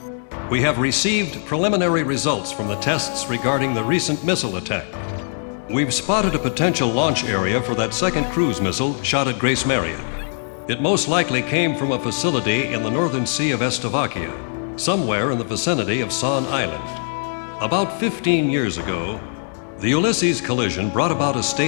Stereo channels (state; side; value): silent; right; 65 dB below the other